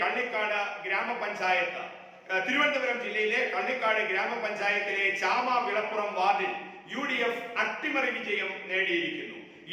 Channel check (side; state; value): both; identical; correlation 1.00